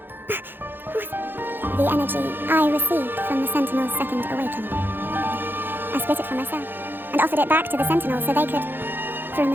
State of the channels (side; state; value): left; late; 0.098 ms